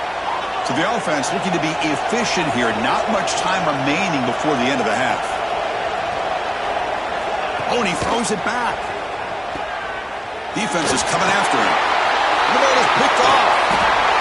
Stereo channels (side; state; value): both; identical; correlation 1.00